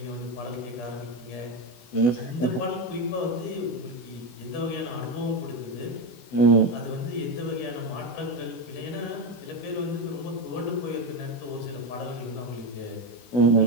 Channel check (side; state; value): right; late; 16 ms